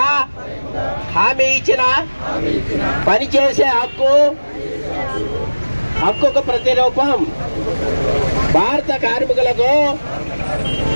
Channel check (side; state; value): both; inverted; correlation -1.00